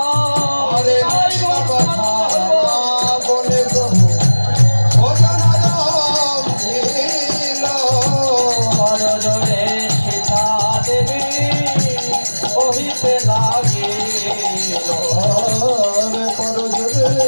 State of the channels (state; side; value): inverted; both; correlation -1.00